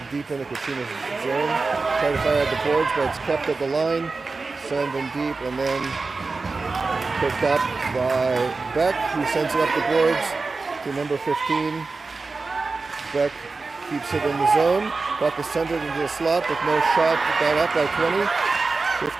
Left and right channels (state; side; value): quieter; left; 4.0 dB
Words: deep in the Kachinas zone. Try to fire at the boards, but it's kept at the line. Send them deep, and then picked up by Beck, who sends it up the boards to number 15. Beck keeps it in the zone. Puck is sent into the slot with no shot. Got up by 20.